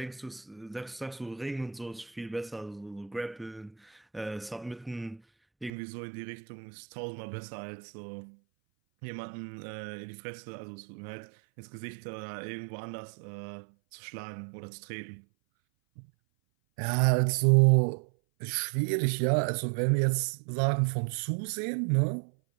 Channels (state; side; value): drops out; left; at 5.7 s